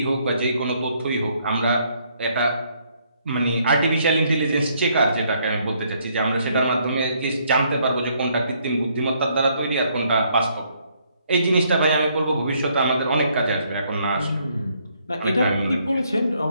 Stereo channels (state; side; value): inverted; both; correlation -0.70